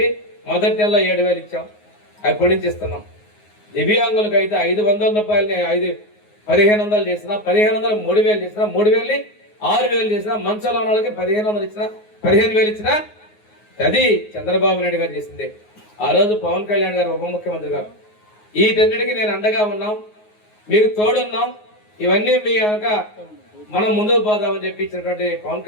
మొదటి నెలలో 7,000 ఇచ్చాం, అప్పటి నుంచి ఇస్తున్నాం. దివ్యాంగులకు అయితే 500 రూపాయలని 1,500 చేసినా, 1,500 3,000 చేసినా, 3,000 6,000 చేసినా, మంచంలో ఉన్న వాళ్ళకి 1,500 ఇచ్చినా, 15,000 ఇచ్చినా అది చంద్రబాబు నాయుడు గారు చేసిందే. ఆ రోజు పవన్ కళ్యాణ్ గారు ఉప ముఖ్యమంత్రి గారు వీటన్నిటికీ నేను అండగా ఉన్నాం, మీకు తోడున్నాం, ఇవన్నీ మీ కనుక మనం ముందుకు పోదామని చెప్పి ఇచ్చినటువంటి పవన్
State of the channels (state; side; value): late; right; 9.5 ms